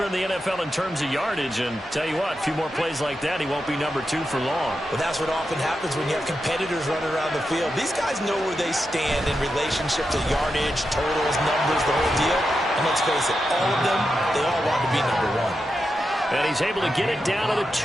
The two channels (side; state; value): both; normal; correlation 0.88